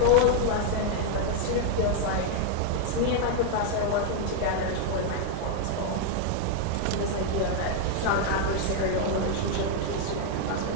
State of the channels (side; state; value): both; different; correlation 0.00